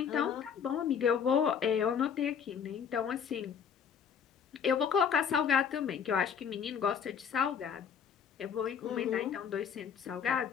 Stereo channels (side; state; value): right; quieter; 7.3 dB